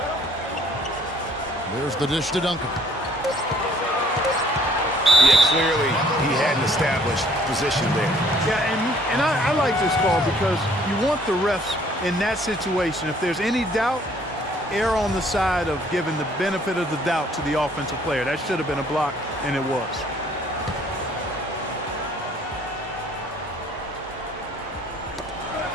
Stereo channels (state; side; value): normal; both; correlation 0.60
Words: There's the dish to Duncan. Yeah, clearly he had an established position there. Yeah, and I like this call because you want the refs in that situation. If there's any doubt, err on the side of giving the benefit of the doubt to the offensive player. That should have been a block, and it was.